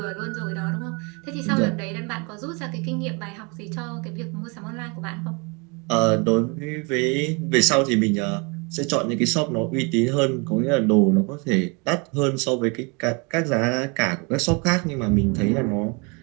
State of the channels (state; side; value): quieter; left; 31.2 dB